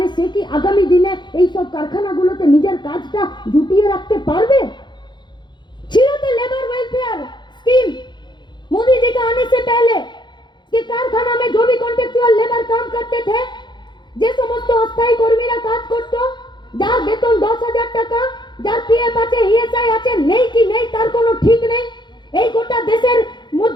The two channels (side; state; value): right; late; 0.22 ms